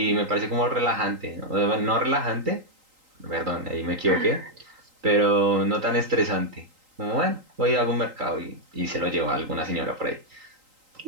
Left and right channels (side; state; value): left; late; 3.8 ms